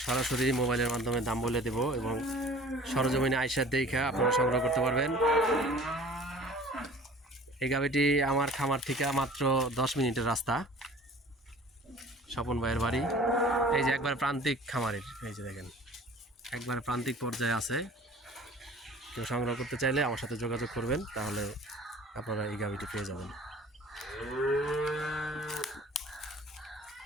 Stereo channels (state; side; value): normal; both; correlation 0.47